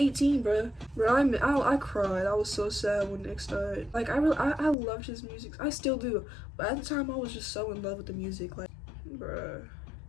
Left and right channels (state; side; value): drops out; right; at 4.8 s